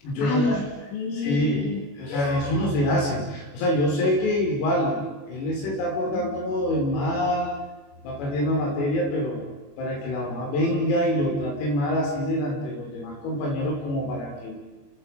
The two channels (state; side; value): late; right; 21 ms